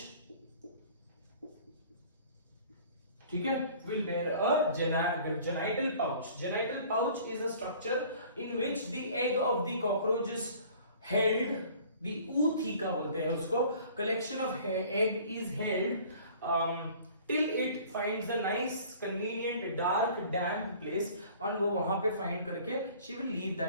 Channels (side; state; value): both; inverted; correlation -0.50